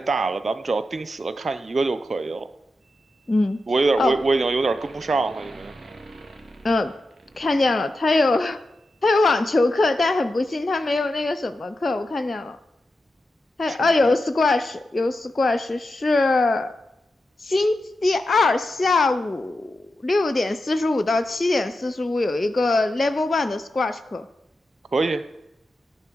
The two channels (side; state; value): both; normal; correlation 0.90